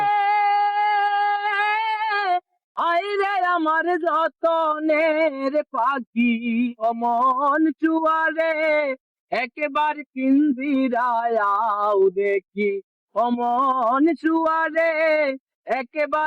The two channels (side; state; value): both; identical; correlation 1.00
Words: আইরে আমার যতনের পাখি অমন চুয়ারে একেবার পিঞ্জিরায়াও দেখি অমন চুয়ারে